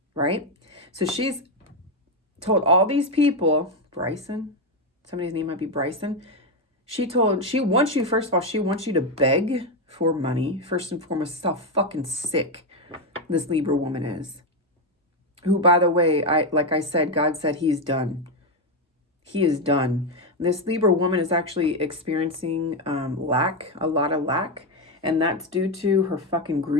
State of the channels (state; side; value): normal; both; correlation 0.07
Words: right? So she's told all these people, Bryson, somebody's name might be Bryson. She wants you, first of all, she wants you to beg for money. First and foremost, is how fucking sick this Libra woman is. Who, by the way, like I said, God said he's done. He is done. This Libra woman is actually experiencing lack, a lot of lack. And that's due to her fucking